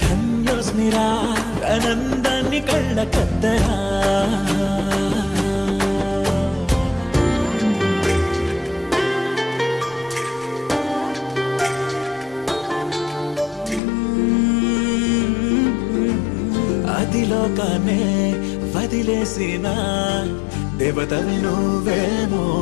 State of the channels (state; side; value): drops out; right; at 13.8 s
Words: ధన్యోస్మిరా ఆనందాన్ని కళ్ళ కద్దరా అదిలోకానే వదిలేసిన దేవతవి నువ్వేమో